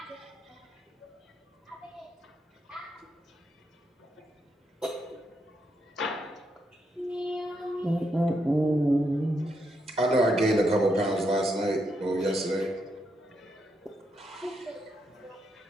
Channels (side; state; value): both; normal; correlation 0.80